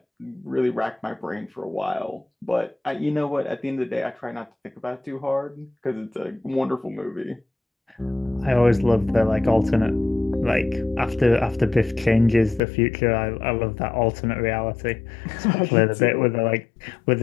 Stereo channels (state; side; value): drops out; right; at 12.6 s